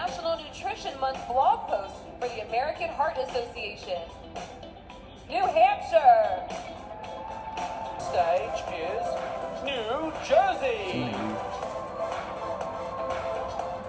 Nutrition Month blog post for the American Heart Association. New Hampshire. Stage is New Jersey.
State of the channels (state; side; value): identical; both; correlation 1.00